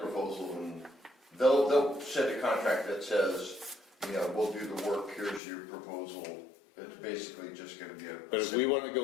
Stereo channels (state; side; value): drops out; right; at 5.4 s